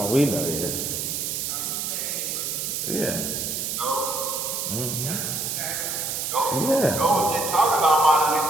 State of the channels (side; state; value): right; noise; hiss, 2 dB below the sound